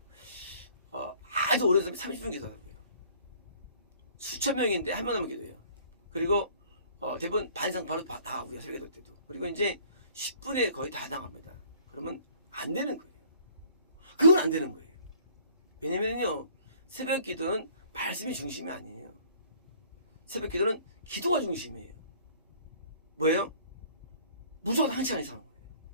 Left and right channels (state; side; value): inverted; both; correlation -0.55